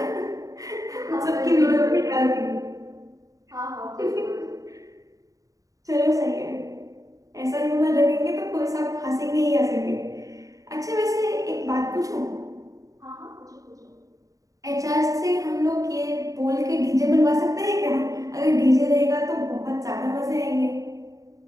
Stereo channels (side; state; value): left; late; 0.16 ms